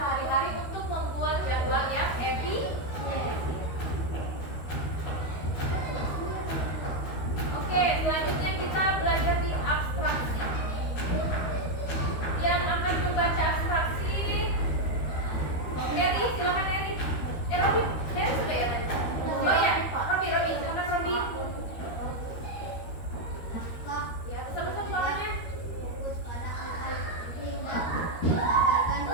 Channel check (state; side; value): late; right; 13 ms